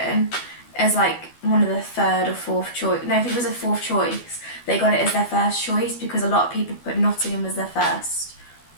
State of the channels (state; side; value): late; right; 12 ms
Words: as, like, one of the 3rd or 4th choice... No, I think it was a 4th choice. They got it as their first choice because a lot of people put Nottingham as their first